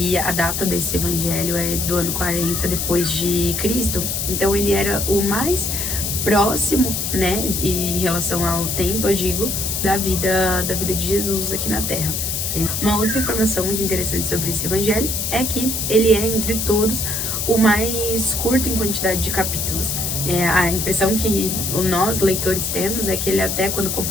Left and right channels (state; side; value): noise; left; hiss, 1 dB below the sound